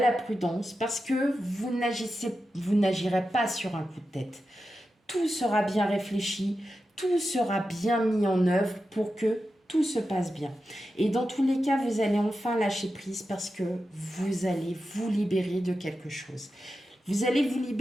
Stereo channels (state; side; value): normal; both; correlation 0.91